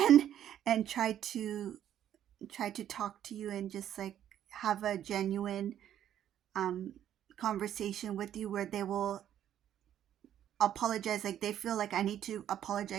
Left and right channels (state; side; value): quieter; left; 10.8 dB